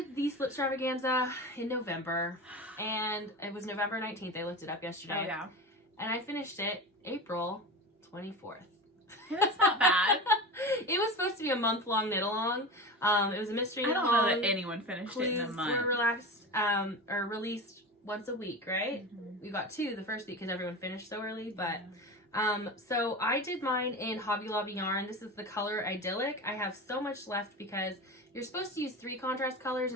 the Slipstravaganza in November, and it was November 19th. I looked it up yesterday. Oh, yeah. And I finished it April 24th. That's not bad. It was supposed to be a month-long Gnit-Along. It was a mystery I Gnit-Along. don't know that anyone finished it in a month. Were released once a week, right? Mm-hmm. We got 2 the first week because everyone finished so early, but... So I did mine in Hobby Lobby yarn. This is the color Idyllic. I have so much left because you're supposed to use 3 contrast colors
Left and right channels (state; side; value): normal; both; correlation 0.27